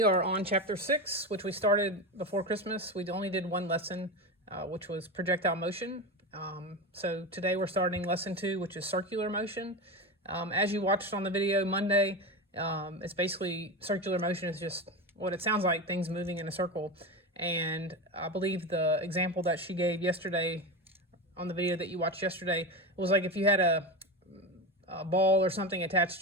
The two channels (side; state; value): both; normal; correlation 0.21